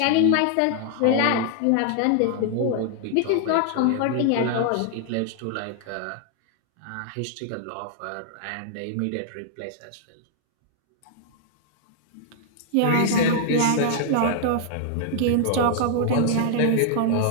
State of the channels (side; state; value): both; different; correlation 0.00